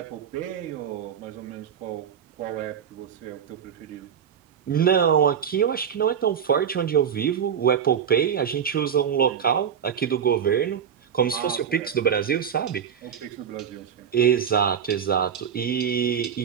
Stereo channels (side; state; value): left; quieter; 8.1 dB